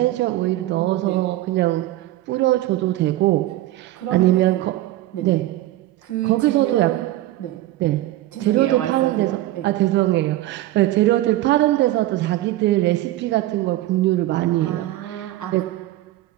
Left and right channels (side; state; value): left; quieter; 15.8 dB